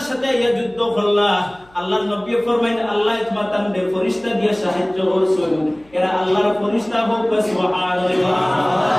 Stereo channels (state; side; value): noise; left; hum, 30 dB below the sound